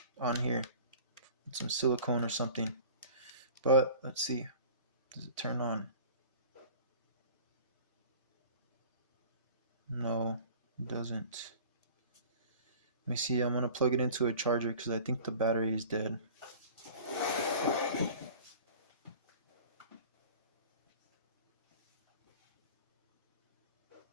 on here with some silicone or something. But let's see. Does it turn on? No, it doesn't. Let me see. I'm going to plug it into a charger because I think the battery is dead.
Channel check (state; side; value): inverted; both; correlation -0.43